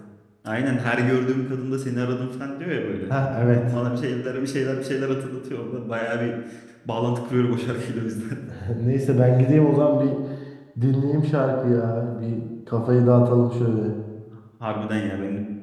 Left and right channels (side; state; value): both; identical; correlation 1.00